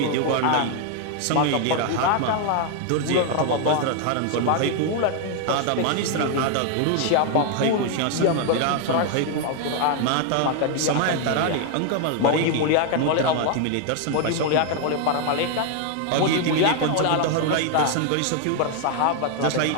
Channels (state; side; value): different; both; correlation 0.00